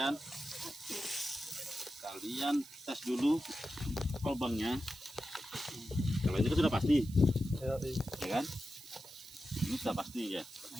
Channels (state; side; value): noise; right; hiss, 18 dB below the sound